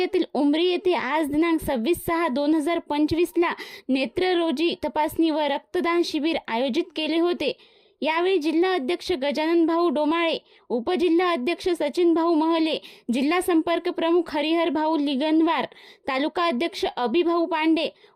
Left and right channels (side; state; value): both; identical; correlation 1.00